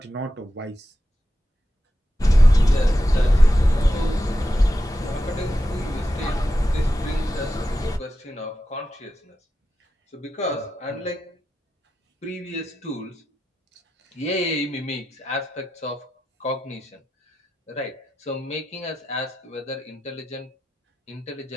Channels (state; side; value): normal; both; correlation 0.90